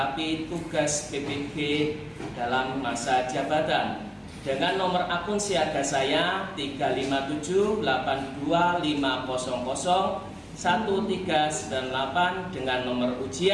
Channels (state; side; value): identical; both; correlation 1.00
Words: tugas PPG dalam masa jabatan dengan nomor akun siaga saya 35782500138 dengan nomor